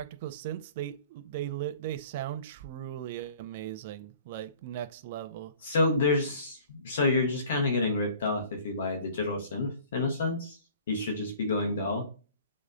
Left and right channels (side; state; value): both; inverted; correlation -0.49